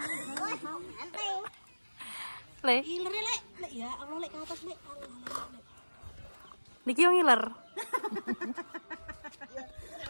Le. Iler lek ya Allah lek ke atas lek. Niki yang ngiler.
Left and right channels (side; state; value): both; inverted; correlation -1.00